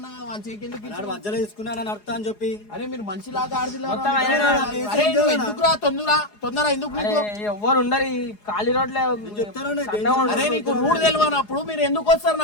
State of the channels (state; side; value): late; right; 4.8 ms